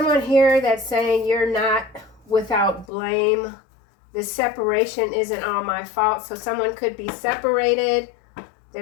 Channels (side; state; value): right; drops out; at 2.9 s